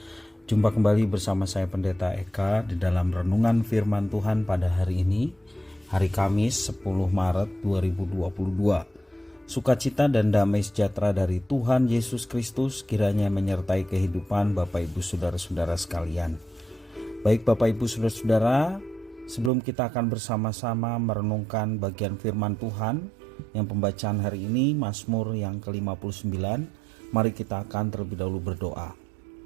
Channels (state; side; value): drops out; left; at 19.5 s